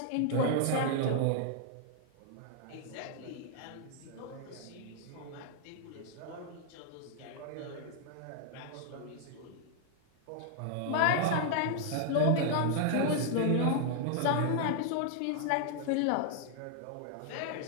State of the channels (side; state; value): both; different; correlation 0.00